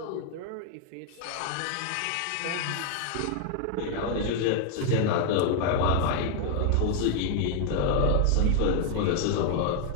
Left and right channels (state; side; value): different; both; correlation 0.00